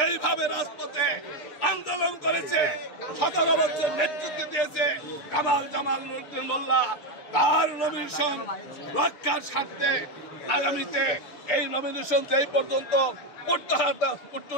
রাজপথে আন্দোলন করেছে, 17 বছর নেতৃত্ব দিয়েছে কামাল জামাল উদ্দিন মোল্লা, তার নমিনেশন রক্ষার স্বার্থে আগামীতে এই নমিনেশন যেই পর্যন্ত পুষ্ট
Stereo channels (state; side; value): late; right; 6.7 ms